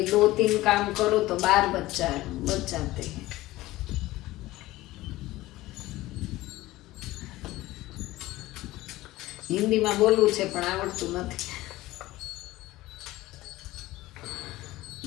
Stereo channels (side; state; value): right; quieter; 17.6 dB